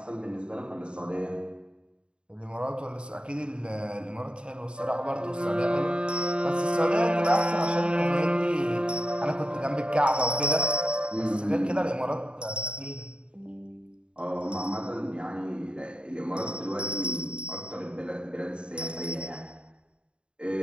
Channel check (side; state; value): left; late; 0.053 ms